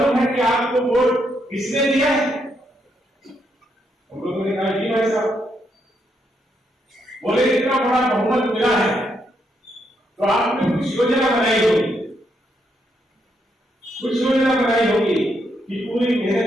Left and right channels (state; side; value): normal; both; correlation 0.78